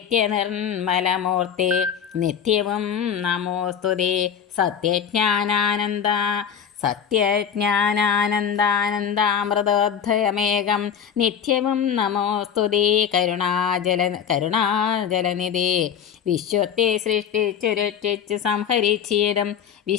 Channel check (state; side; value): quieter; right; 8.1 dB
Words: നിത്യവും നമോസ്തുതേ സത്യജ്ഞാനാനന്ദാമൃതോദ്ധയമേകം. നിത്യവും നമോസ്തുതേ കരുണാജലനിധേ. വിശ്വത്തെ സൃഷ്ടിച്ചു രക്ഷിച്ചു സംഹരിച്ചിടും